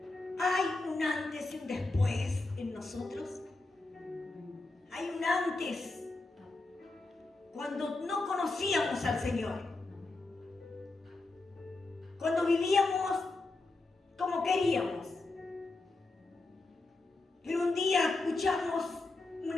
¿Hay un antes y un después en nosotros? ¿Hay un antes cuando no conocíamos al Señor? Cuando vivíamos como queríamos. Pero un día escuchamos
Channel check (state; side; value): quieter; right; 3.2 dB